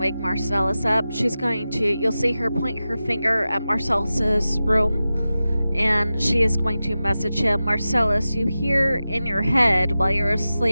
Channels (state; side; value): inverted; both; correlation -0.94